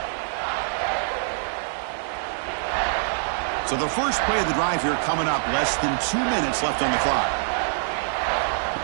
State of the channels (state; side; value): silent; left; digital silence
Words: So the first play of the drive here coming up, less than 2 minutes left on the clock.